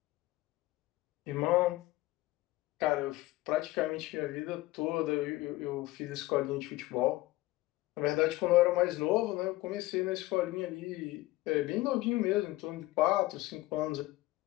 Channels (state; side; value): quieter; right; 18.5 dB